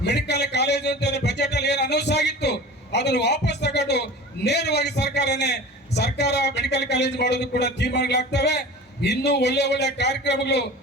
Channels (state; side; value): normal; both; correlation 0.37